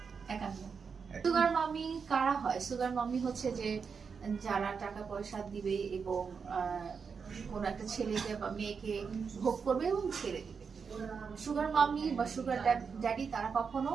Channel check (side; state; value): left; quieter; 5.8 dB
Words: 51। সুগার মামি কারা হয়? সুগার মামি হচ্ছে যে যারা টাকা পয়সা দিবে এবং কোন একটা ছেলেকে বা মেয়েকে ভোগ করবে এবং ছেড়ে দিবে। সুগার মামি বা সুগার ড্যাডি তারা কখনো